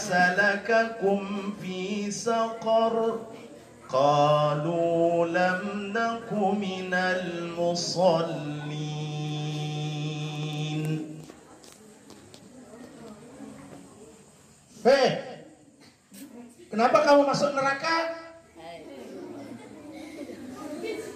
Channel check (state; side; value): identical; both; correlation 1.00